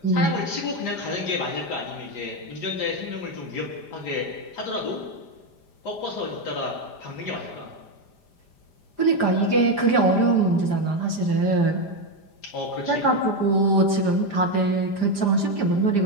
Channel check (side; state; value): right; late; 5.0 ms